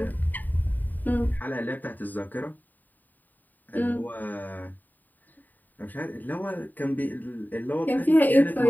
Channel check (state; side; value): late; right; 0.087 ms